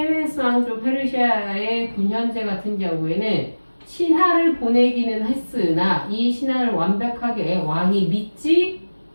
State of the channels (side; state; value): both; inverted; correlation -1.00